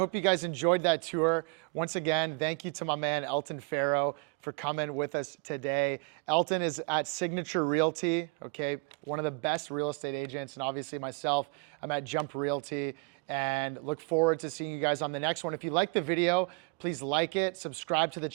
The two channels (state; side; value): quieter; left; 31.5 dB